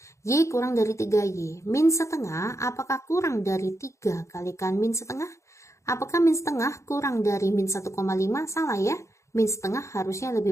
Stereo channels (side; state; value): right; late; 0.14 ms